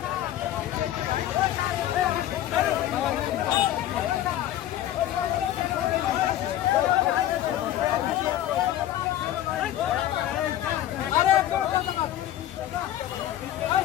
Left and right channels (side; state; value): right; quieter; 12.6 dB